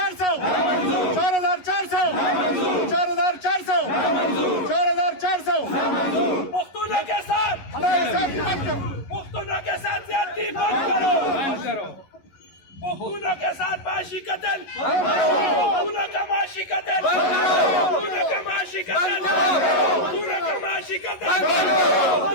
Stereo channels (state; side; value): late; right; 11 ms